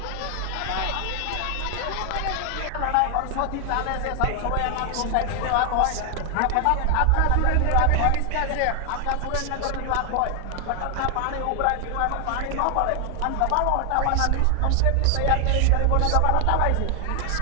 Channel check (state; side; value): different; both; correlation 0.00